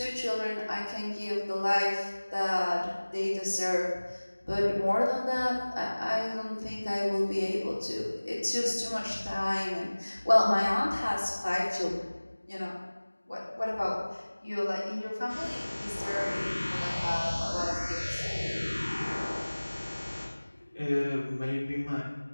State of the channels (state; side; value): inverted; both; correlation -1.00